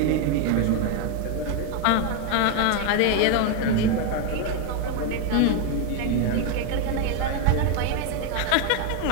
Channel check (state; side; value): different; both; correlation 0.01